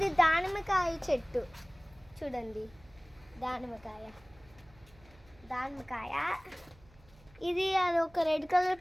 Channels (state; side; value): noise; right; hum, 26 dB below the sound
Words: దానిమ్మకాయ చెట్టు చూడండి, దానిమ్మకాయ. ఇది అది ఒక రెడ్ కలర్